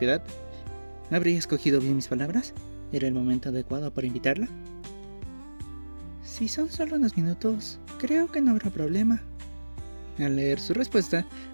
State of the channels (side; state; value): both; inverted; correlation -1.00